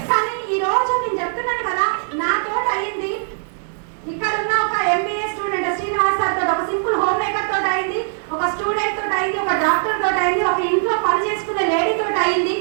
కానీ ఈ రోజు నేను చెప్తున్నాను కదా, నాతో అయింది. ఇక్కడ ఉన్న ఒక ఎంబీఏ స్టూడెంట్ శ్రీనివాస్ సార్ తోటి, ఒక సింపుల్ హోమ్ మేకర్ తోటి అయింది, ఒక స్టూడెంట్ తోటి అయింది, ఒక డాక్టర్ తోటి అయింది, ఒక ఇంట్లో పని చేసుకునే లేడీ తోటి అయింది,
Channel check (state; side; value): silent; left; 65 dB below the other